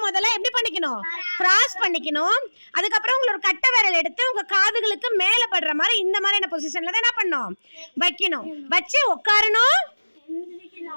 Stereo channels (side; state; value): both; inverted; correlation -1.00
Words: முதல்ல எப்படி பண்ணிக்கணும்? கிராஸ் பண்ணிக்கணும். அதுக்கப்புறம் உங்களோட கட்டை விரல் எடுத்து உங்க காதுகளுக்கு மேல படுற மாதிரி இந்த மாதிரியான பொசிஷன்ல தான் என்ன பண்ணணும்? வைக்கணும். வச்சு உட்காரணும்,